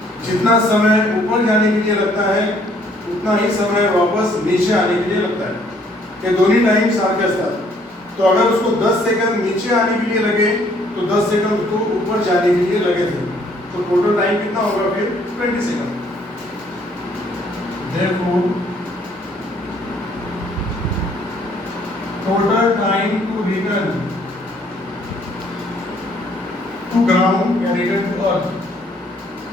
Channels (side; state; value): both; normal; correlation 0.63